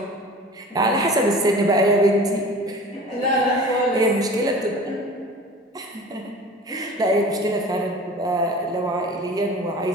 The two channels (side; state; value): both; normal; correlation 0.41